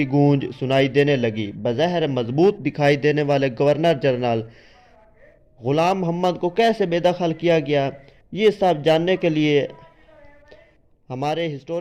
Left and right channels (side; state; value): both; identical; correlation 1.00